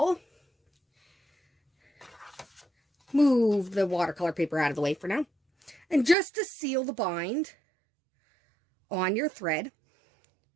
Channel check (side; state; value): left; drops out; at 6.2 s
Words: Move the watercolor paper out of the way for now. And just to seal the bind on your thread,